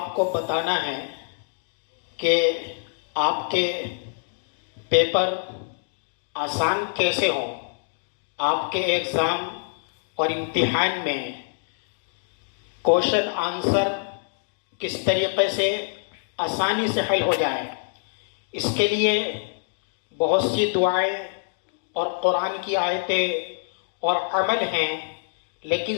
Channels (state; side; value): silent; right; digital silence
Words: کو بتانا ہے کہ آپ کے پیپر آسان کیسے ہوں، آپ کے ایگزام اور امتحان میں کوشچن آنسر کس طریقے سے آسانی سے حل ہو جائے۔ اس کے لیے بہت سی دعائیں اور قرآن کی آیتیں اور عمل ہیں،